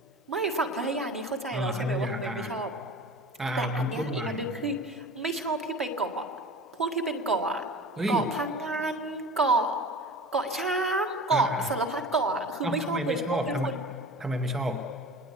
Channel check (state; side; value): normal; both; correlation 0.38